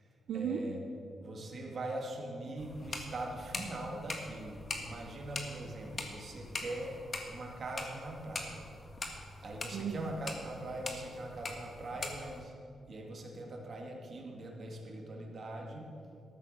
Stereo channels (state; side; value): normal; both; correlation 0.79